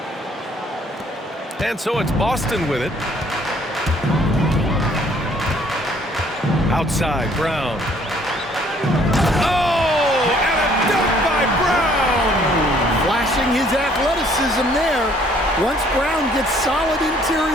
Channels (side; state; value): both; normal; correlation 0.61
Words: And so it's Boston with it. Outside, Brown. Oh, and a dunk by Brown! Flashing his athleticism there. Once Brown gets solid